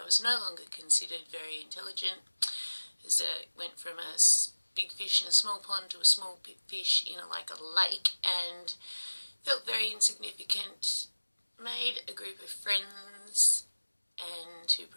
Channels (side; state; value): both; inverted; correlation -1.00